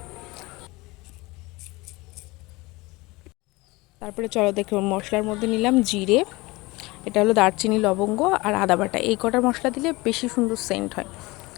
তারপরে চলো দেখো, মশলার মধ্যে নিলাম জিরে, এটা হলো দারচিনি, লবঙ্গ আর আদা বাটা। এই কটা মশলা দিলে বেশি সুন্দর সেন্ট হয়।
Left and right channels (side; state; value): right; quieter; 22.6 dB